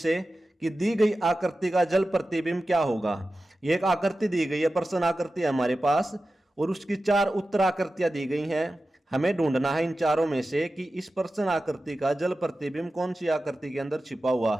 कि दी गई आकृति का जल प्रतिबिंब क्या होगा। ये एक आकृति दी गई है, प्रश्न आकृति है हमारे पास, और उसकी 4 उत्तर आकृतियां दी गई हैं। हमें ढूंढना है इन चारों में से कि इस प्रश्न आकृति का जल प्रतिबिंब कौन सी आकृति के अंदर छिपा हुआ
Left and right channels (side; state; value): both; normal; correlation 0.94